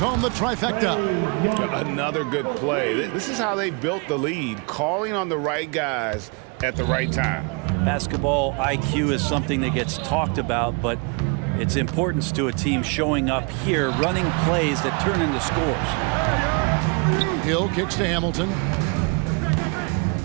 the trifecta. Another good play. This is how they built the lead, calling on the right guys at the right time. Basketball IQ is something that gets talked about, but its importance to a team showing up here, running plays that turn into scores. Hill kicks to Hamilton.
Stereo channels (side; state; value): left; quieter; 32.9 dB